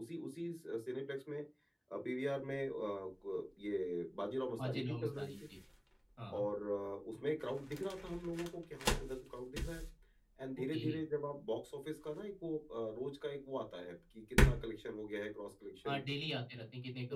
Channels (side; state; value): both; identical; correlation 1.00